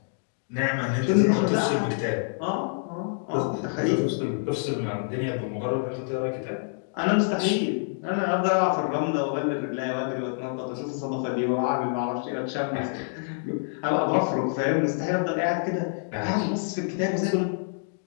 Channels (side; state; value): right; silent; digital silence